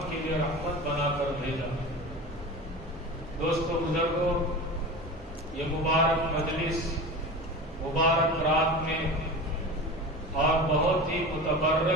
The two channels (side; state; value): both; normal; correlation 0.31